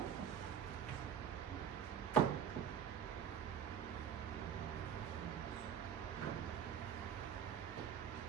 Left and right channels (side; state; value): left; quieter; 8.5 dB